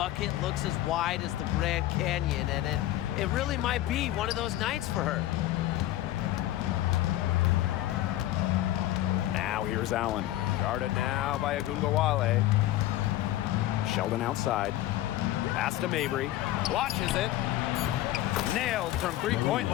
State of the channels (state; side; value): quieter; right; 14.6 dB